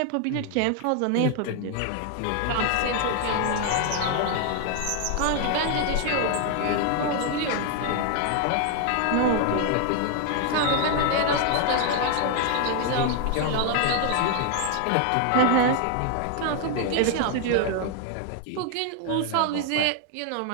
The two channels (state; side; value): different; both; correlation 0.00